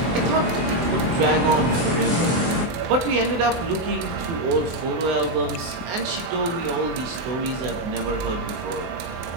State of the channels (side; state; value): left; late; 24 ms